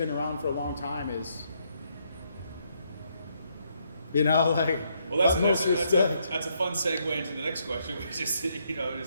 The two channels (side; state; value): both; inverted; correlation -0.75